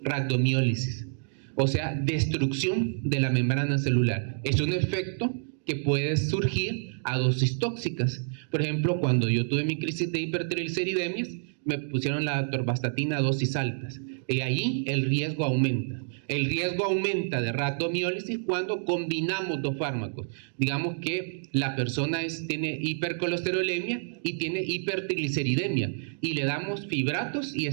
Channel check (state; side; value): silent; left; digital silence